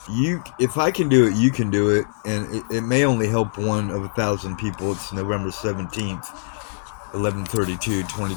if I can do it, you can do it, and it may only help one of 1,000 people. It's November 17th, 11:32,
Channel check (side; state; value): right; silent; digital silence